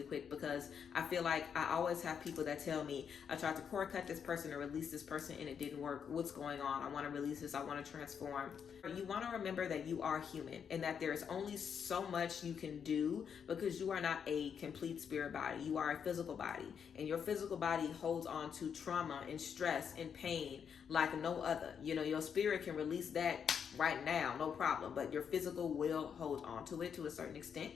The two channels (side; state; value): right; quieter; 7.3 dB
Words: quick, because I feel like I always have people that tell me, I tried to cord cut this person or release this person and it didn't work. What's going on? I want to release this. I want to transform. You want to remember that you are human and that there's only so much you can do, because you are not a complete spirit body. You are a physical body, and your physical body holds on to trauma and stress and pain like no other. Your spirit can release that right now, no problem, but your physical will hold on to it to a certain extent.